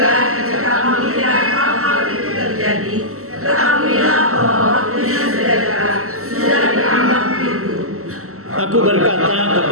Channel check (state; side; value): late; left; 0.63 ms